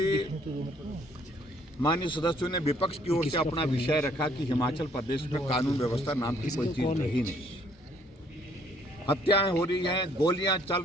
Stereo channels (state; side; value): normal; both; correlation 0.63